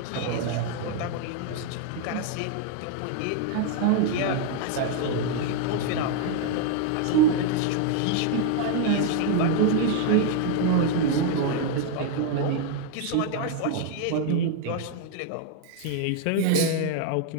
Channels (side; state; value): both; different; correlation 0.00